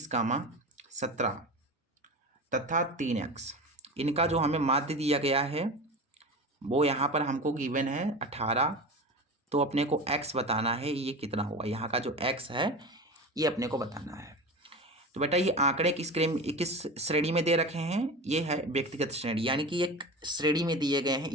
17 तथा 3x। इनका जो हमें माध्य दिया गया है वो यहाँ पर हमको गिवन है 18। तो अपने को x बताना है ये कितना होगा, यहाँ का जो x है ये अपने को बताना है। तो बेटा ये आंकड़े किस श्रेणी में दे रखे हैं, ये है व्यक्तिगत श्रेणी, यानी कि एक श्रेणी में दिए गए हैं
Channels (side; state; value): both; normal; correlation 0.28